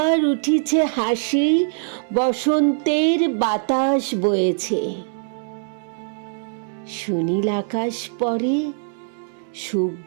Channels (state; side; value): silent; left; digital silence